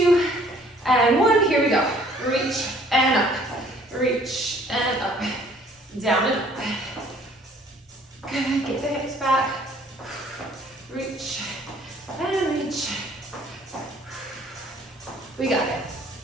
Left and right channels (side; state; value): both; normal; correlation 0.58